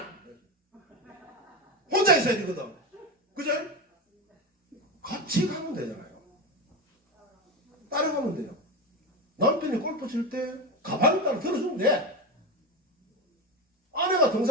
혼자 있어야 되거든. 그죠? 같이 가면 되잖아요. 따라가면 돼요. 남편이 골프 칠 때 가방을 따라 들어주면 돼. 아내가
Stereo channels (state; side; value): normal; both; correlation 0.19